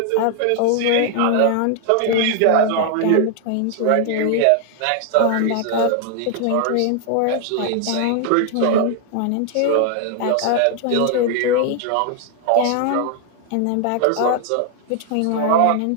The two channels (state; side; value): different; both; correlation 0.00